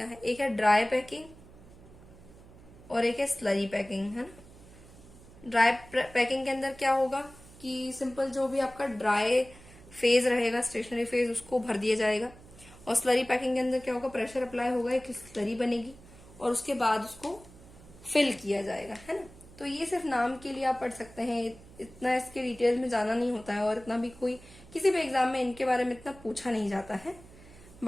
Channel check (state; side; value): noise; right; hum, 21 dB below the sound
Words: है। एक है ड्राई पैकिंग और एक है स्लरी पैकिंग, है ना। ड्राई पैकिंग के अंदर क्या होगा कि सिंपल जो भी आपका ड्राई फेज रहेगा, स्टेशनरी फेज, उसको भर दिया जाएगा। और स्लरी पैकिंग के अंदर क्या होगा, प्रेशर अप्लाई होगा, एक स्लरी बनेगी और उसके बाद उसको फिल किया जाएगा, है ना। तो ये सिर्फ नाम के लिए आप पढ़ सकते हैं, इतना इसके डिटेल में जाना नहीं होता है, और इतना भी कोई किसी भी एग्जाम में इनके बारे में इतना पूछा नहीं जाता है।